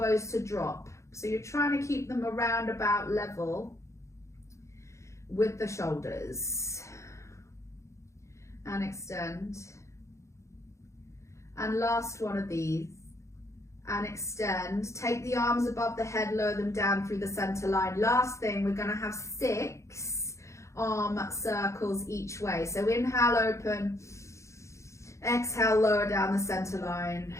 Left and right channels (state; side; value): late; right; 0.14 ms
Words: to drop. So you're trying to keep them around about level with the shoulders. And extend. And last one of these. And extend. Take the arms above the head, lower them down through the center line. Last thing, we're going to have 6 arm circles each way. So inhale, open. Exhale, lower down the center line.